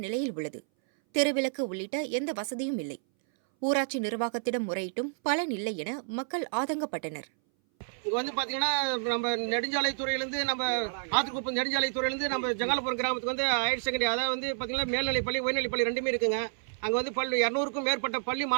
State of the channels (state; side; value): silent; left; 58 dB below the other